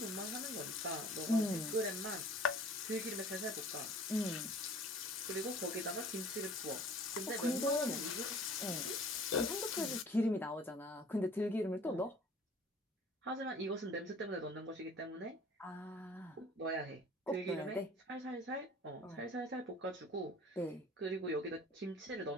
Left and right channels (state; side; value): normal; both; correlation 0.48